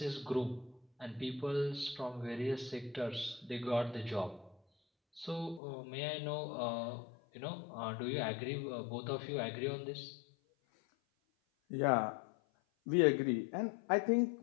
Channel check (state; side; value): drops out; right; at 5.6 s